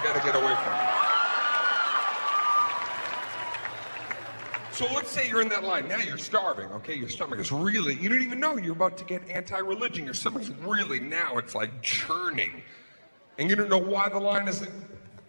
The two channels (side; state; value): both; inverted; correlation -1.00